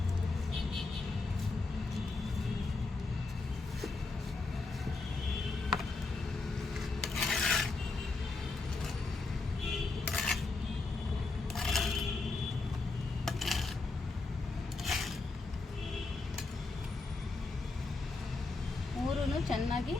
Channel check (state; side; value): quieter; right; 3.6 dB